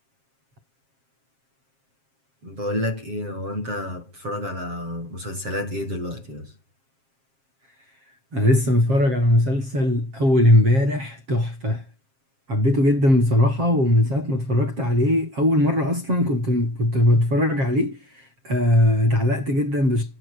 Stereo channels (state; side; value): late; left; 7.5 ms